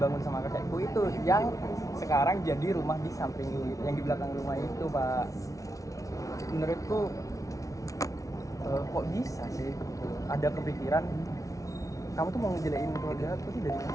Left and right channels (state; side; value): late; right; 0.17 ms